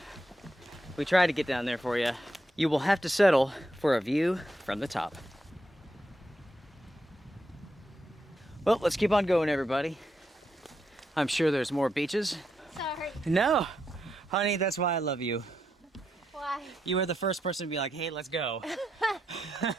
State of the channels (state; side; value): normal; both; correlation 0.82